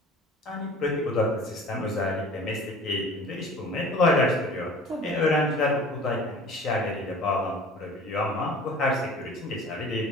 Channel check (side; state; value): both; normal; correlation 0.44